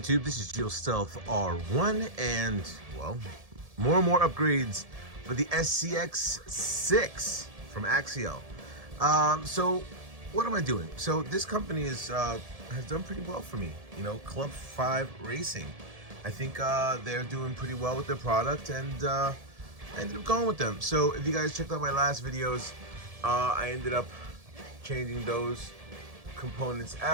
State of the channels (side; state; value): left; late; 1.7 ms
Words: This is AXIAL Stealth R1, and, well, more and more upgrades for the SCX6 from Axial. So, what am I doing? So, this company has done pretty well for me. You know, Club5Racing. I think they're doing pretty well with their product, and I ended up going with them. So, if you guys checked out my last videos, I ended up changing those components